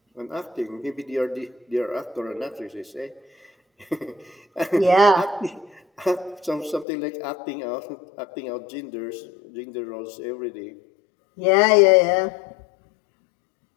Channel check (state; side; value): drops out; right; at 6.9 s